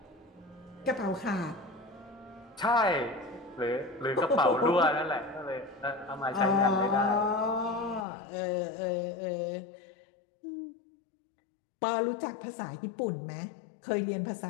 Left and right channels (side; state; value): right; drops out; at 8.1 s